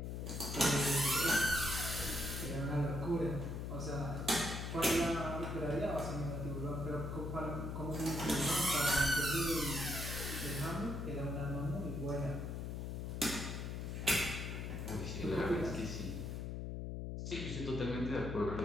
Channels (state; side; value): noise; left; hum, 4 dB below the sound